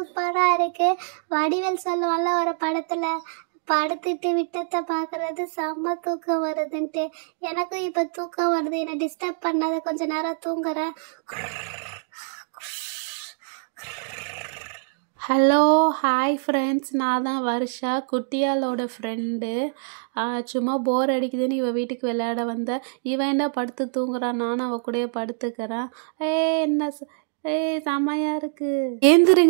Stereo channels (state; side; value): silent; left; digital silence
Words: இருக்கு. வடிவேல் சொல்லுவான்ல ஒரு படத்தில், படுத்துட்டு விட்டத்தை பார்க்கறது செம்ம தூக்கம் வருதுன்ட்டு. எனக்கும் இப்போ தூக்கம் வருது. என்னை டிஸ்டர்ப் பண்ணாத, கொஞ்ச நேரம் தூங்குறேன். ஹலோ ஹாய் ஃப்ரெண்ட்ஸ், நான் தான் வர்ஷா, குட்டியாளோட ஃப்ரெண்டு. சும்மா போர் அடிக்குதுன்னு இவள் வீட்டுக்கு விளையாட வந்தேன். இவன் என்ன படுத்து தூங்குறான், நானும் அவள் கூடயே படுத்துக்கிறேன். என்ன செம்மையாக இருக்குது.